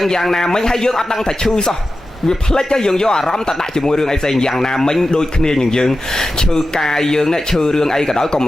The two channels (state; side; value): normal; both; correlation 0.93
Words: ងយ៉ាងណាមិញហើយយើងអត់ដឹងថាឈឺសោះវាផ្លិចហើយយើងយកអារម្មណ៍ទៅដាក់ជាមួយរឿងអីផ្សេងយ៉ាងណាមិញដូចគ្នានឹងយើងឈឺកាយយើងនេះឈឺរឿងអីក៏ដោយកុំ